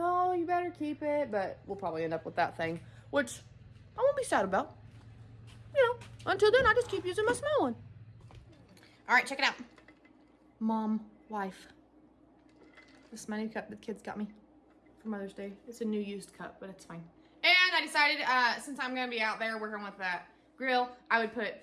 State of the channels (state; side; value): identical; both; correlation 1.00